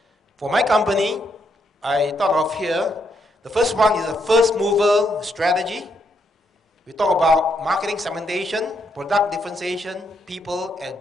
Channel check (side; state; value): both; normal; correlation 0.77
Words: For my company, I thought of here, the first one is a first mover strategy. We talk about marketing segmentation, product differentiation, people, and